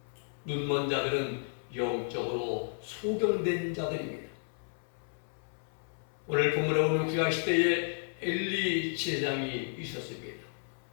눈먼 자들은 영적으로 소경된 자들입니다. 오늘 본문에 보면 구약시대에 엘리 제사장이 있었습니다.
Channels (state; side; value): silent; right; 56 dB below the other